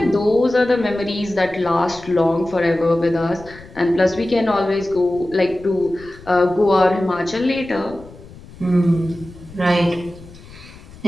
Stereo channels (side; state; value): left; noise; rumble, 20 dB below the sound